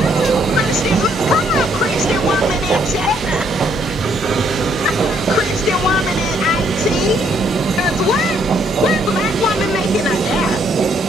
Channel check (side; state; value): both; normal; correlation 0.69